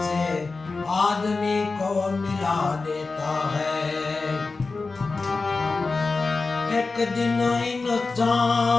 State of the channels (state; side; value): quieter; right; 3.9 dB